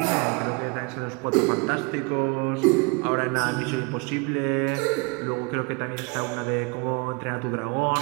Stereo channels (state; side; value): quieter; left; 30.6 dB